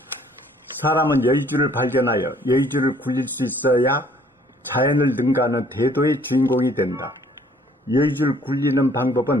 사람은 여의주를 발견하여 여의주를 굴릴 수 있어야 자연을 능가하는 대도의 주인공이 된다. 여의주를 굴리는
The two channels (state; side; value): normal; both; correlation 0.59